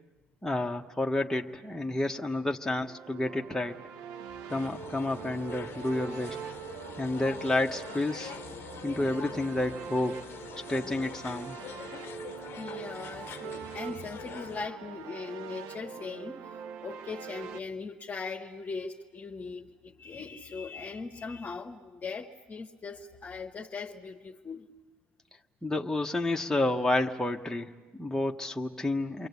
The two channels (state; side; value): normal; both; correlation 0.84